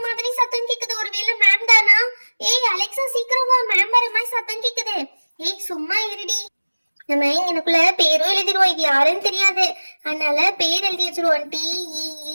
மாதிரி சத்தம் கேக்குது. ஒருவேளை மேம் தானா? ஏய் அலெக்சா, சீக்கிரம் வா, மேம் வர மாதிரி சத்தம் கேக்குது. ஏய் சும்மா இருடி. நம்ம எனக்குள்ள பேரும் எழுதிடுவோம். இது யாருன்னு தெரியாது, அதனால பேர் எழுதி வச்சிருவோம்.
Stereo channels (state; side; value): inverted; both; correlation -1.00